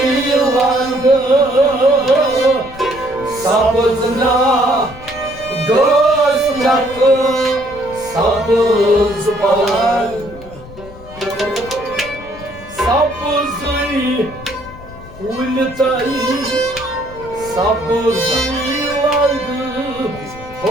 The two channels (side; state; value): left; noise; rumble, 18 dB below the sound